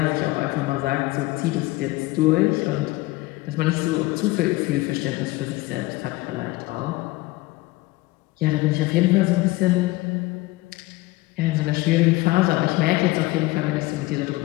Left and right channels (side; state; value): right; quieter; 20.3 dB